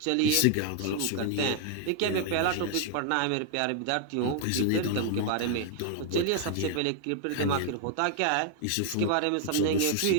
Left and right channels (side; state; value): both; different; correlation 0.00